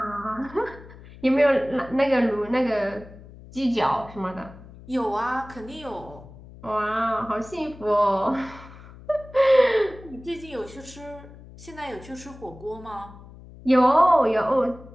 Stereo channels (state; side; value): noise; left; hum, 19 dB below the sound